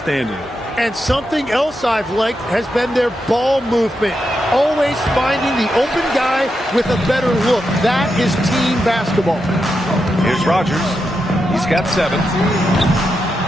And something else I've liked has been their ball movement. Always finding the open guy with a better look. That is team basketball. Here's Rogers. He's got 7.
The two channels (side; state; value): both; normal; correlation 0.86